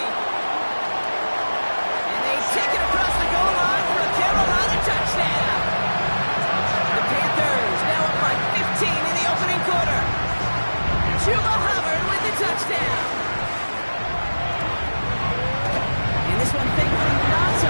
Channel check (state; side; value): inverted; both; correlation -1.00